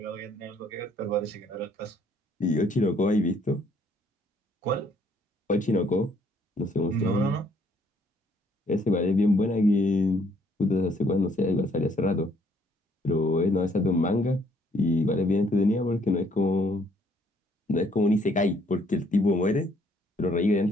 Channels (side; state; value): both; normal; correlation 0.65